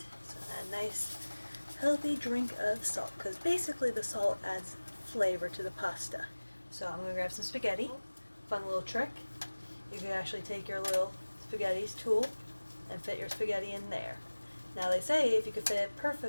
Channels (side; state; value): both; inverted; correlation -1.00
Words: so add a nice healthy drink of salt, because basically the salt adds flavor to the pasta. So I'm going to grab some spaghetti. Fun little trick. You can actually take your little spaghetti tool and fit your spaghetti in there. Now they say if you could fit it